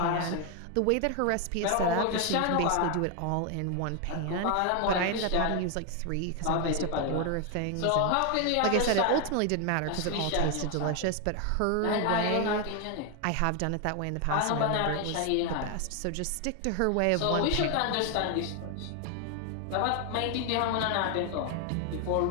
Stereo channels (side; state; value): both; different; correlation 0.01